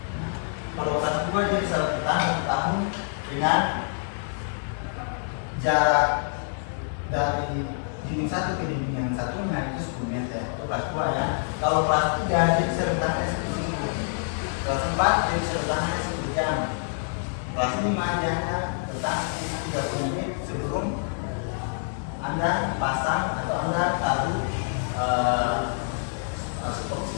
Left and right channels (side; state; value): right; silent; digital silence